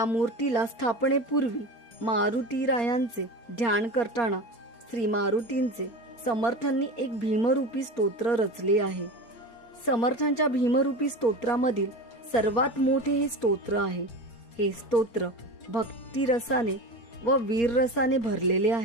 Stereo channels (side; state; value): right; late; 4.3 ms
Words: मूर्तीला स्थापनेपूर्वी मारुतीरायांचे ध्यान करताना श्री मारुतींचे समर्थांनी एक भीमरूपी स्तोत्र रचले आहे. समर्थांच्या भीमरूपी स्तोत्रामधील सर्वात मोठे हे स्तोत्र आहे. हे स्तोत्र भक्तिरसाने व वीररसाने भरलेले